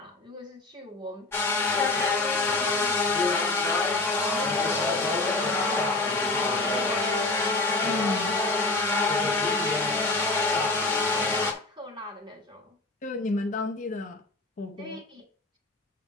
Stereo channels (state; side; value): quieter; right; 3.1 dB